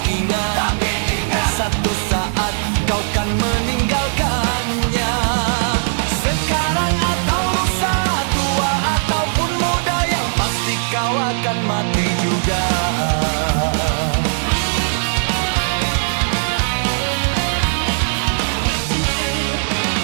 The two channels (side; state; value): left; silent; digital silence